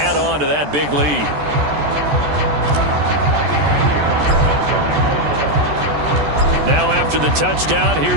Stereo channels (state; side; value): late; left; 14 ms